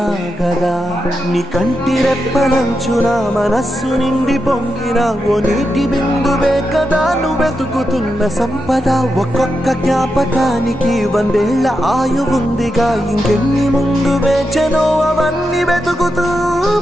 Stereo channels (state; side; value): normal; both; correlation 0.87